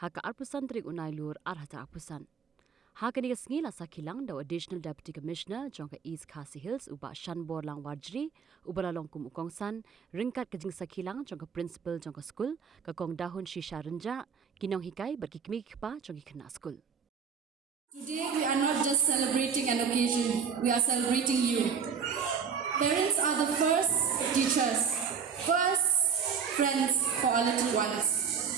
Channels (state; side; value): quieter; left; 6.4 dB